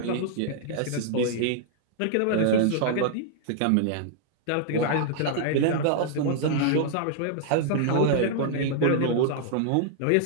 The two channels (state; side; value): different; both; correlation -0.01